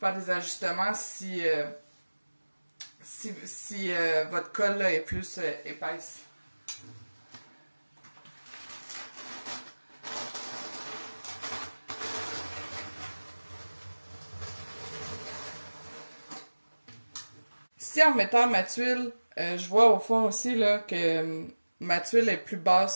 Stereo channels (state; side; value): inverted; both; correlation -1.00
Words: faire des ajustements si votre colle là, est plus épaisse. Ici, en mettant ma tuile, je vois au fond aussi là, que ma tuile est plus basse